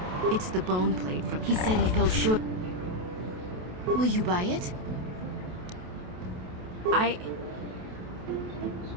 It's the bone plate from... He said he felt sure... Will you buy it?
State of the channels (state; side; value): late; left; 28 ms